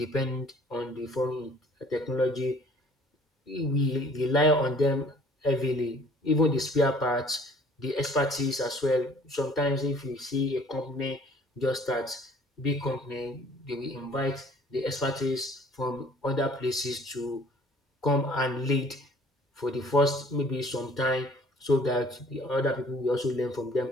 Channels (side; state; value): both; normal; correlation 0.55